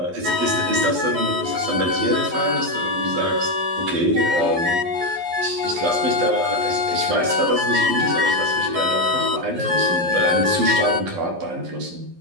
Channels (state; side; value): late; left; 12 ms